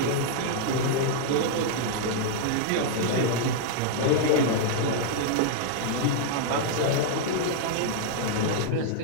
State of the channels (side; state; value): both; different; correlation -0.01